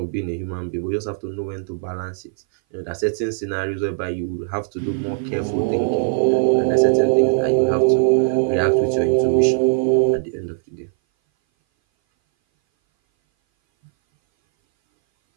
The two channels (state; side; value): silent; left; 59 dB below the other